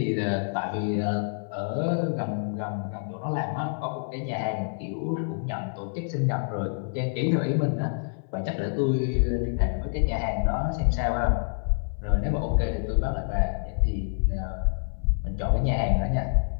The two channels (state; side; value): silent; right; 58 dB below the other